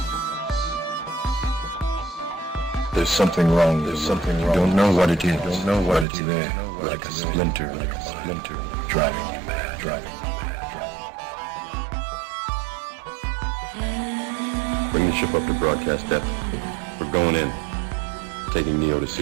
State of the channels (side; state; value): left; drops out; at 6.1 s